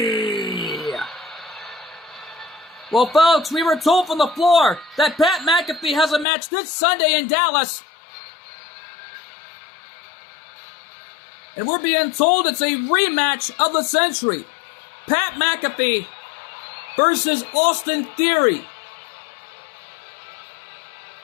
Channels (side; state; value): right; drops out; at 6.2 s